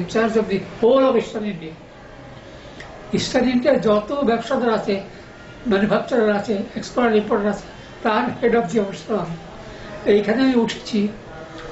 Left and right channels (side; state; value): both; identical; correlation 1.00